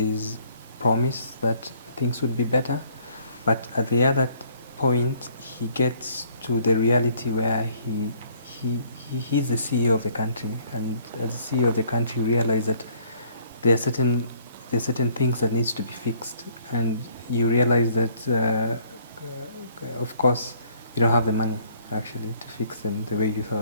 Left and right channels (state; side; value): inverted; both; correlation -0.61